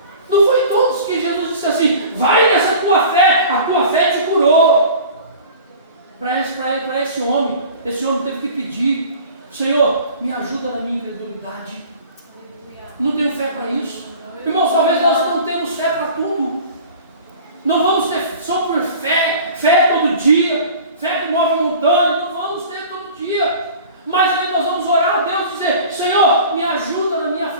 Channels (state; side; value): inverted; both; correlation -0.42